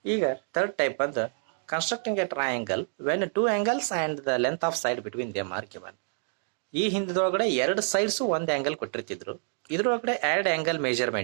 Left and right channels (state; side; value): silent; left; digital silence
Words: ಈಗ third type ಬಂದು constructing a triangle when two angles and the length of side between them are given. ಈ ಹಿಂದಿನೊಳಗಡೆ ಎರಡು sides ಒಂದು angle ಕೊಟ್ಟಿರ್ತಿದ್ರು. ಇದ್ರೊಳಗಡೆ ಎರಡು angle